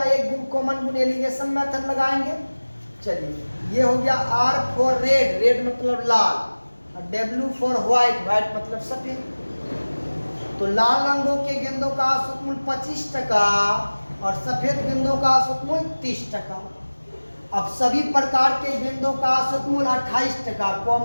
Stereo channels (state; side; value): inverted; both; correlation -1.00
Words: एक गुण कॉमन गुण एलिगेशन मेथड लगाएंगे। चलिए ये हो गया R फॉर रेड, रेड मतलब लाल, और W फॉर व्हाइट, व्हाइट मतलब सफेद। तो लाल रंगों के गेंदों का औसत मूल्य 25 टका और सफेद गेंदों का औसत मूल्य 30 टका। अब सभी प्रकार के गेंदों का औसत मूल्य 28 टका।